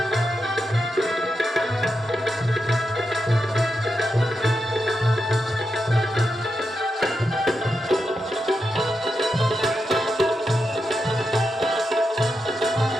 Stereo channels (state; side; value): normal; both; correlation 0.87